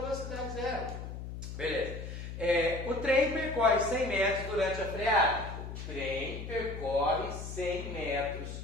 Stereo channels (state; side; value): noise; left; hum, 8 dB below the sound